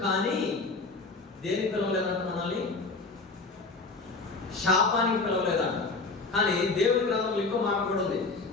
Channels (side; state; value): right; quieter; 3.8 dB